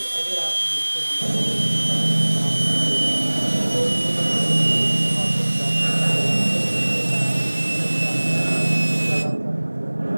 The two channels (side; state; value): both; inverted; correlation -1.00